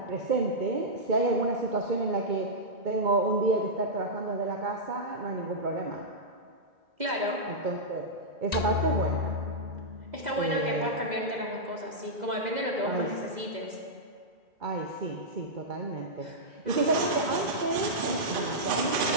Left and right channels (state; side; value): late; left; 2.0 ms